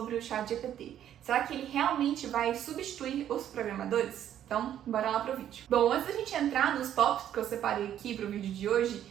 o ChatGPT. Será que ele realmente vai substituir os programadores? Então, bora lá pro vídeo. Bom, antes da gente entrar nos tópicos que eu separei aqui pro vídeo de hoje,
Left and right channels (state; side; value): quieter; left; 10.7 dB